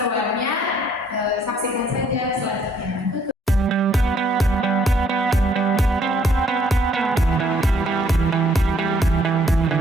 saksikan saja selanjutnya.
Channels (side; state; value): both; normal; correlation 0.65